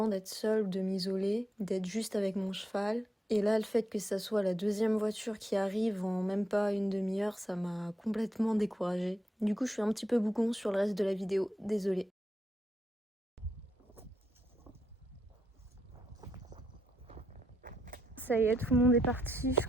d'être seule, de m'isoler, d'être juste avec mon cheval. Et là, le fait que ça soit la deuxième voiture qui arrive en même pas une demi-heure, ça m'a complètement découragée. Du coup, je suis un petit peu bougon sur le reste de la vidéo, désolée. Ça y est, tout le monde est parti, je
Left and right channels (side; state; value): both; normal; correlation 0.81